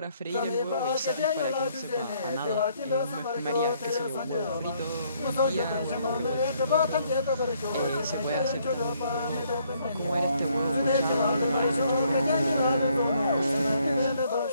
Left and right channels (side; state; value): both; inverted; correlation -0.68